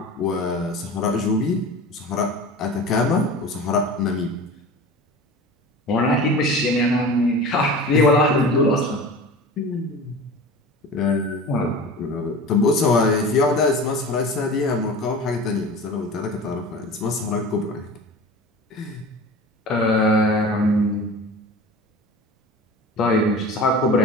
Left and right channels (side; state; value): both; normal; correlation 0.36